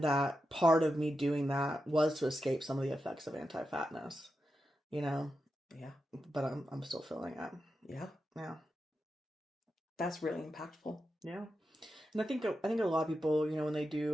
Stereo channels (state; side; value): normal; both; correlation 0.89